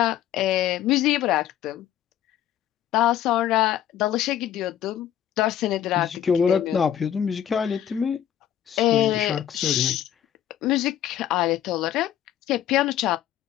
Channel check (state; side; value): quieter; right; 10.8 dB